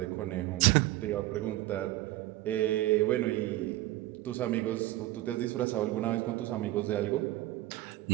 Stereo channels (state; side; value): quieter; left; 16.5 dB